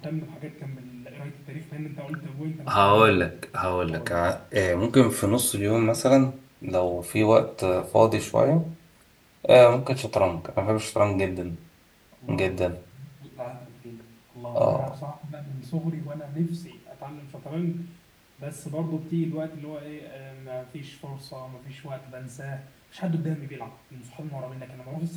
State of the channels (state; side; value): identical; both; correlation 1.00